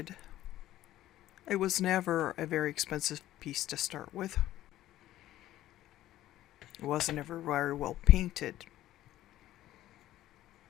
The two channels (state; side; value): quieter; right; 14.1 dB